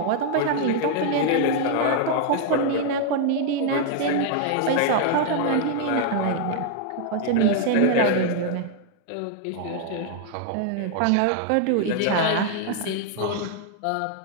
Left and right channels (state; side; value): different; both; correlation 0.00